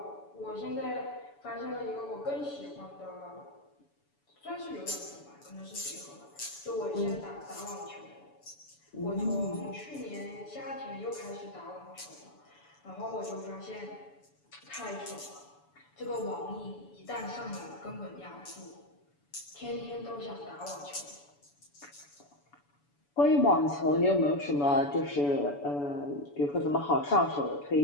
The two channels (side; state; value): right; late; 7.0 ms